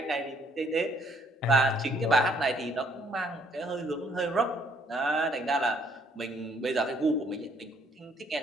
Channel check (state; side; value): normal; both; correlation 0.65